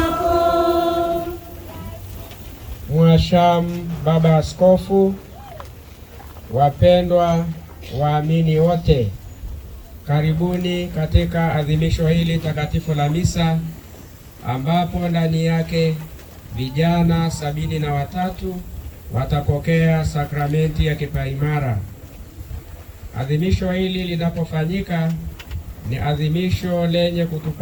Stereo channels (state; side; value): identical; both; correlation 1.00